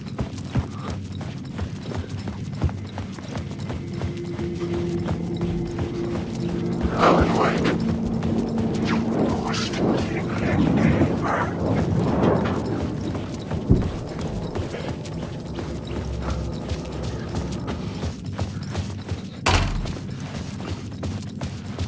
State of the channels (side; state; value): both; identical; correlation 1.00